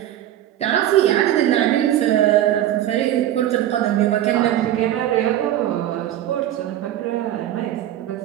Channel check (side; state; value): left; quieter; 12.4 dB